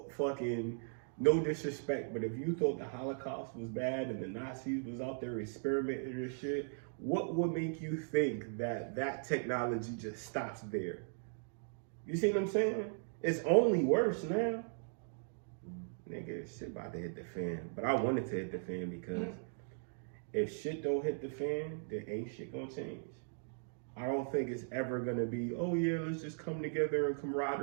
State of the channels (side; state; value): left; silent; digital silence